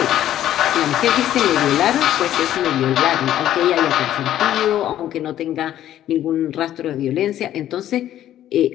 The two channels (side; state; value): right; quieter; 12.1 dB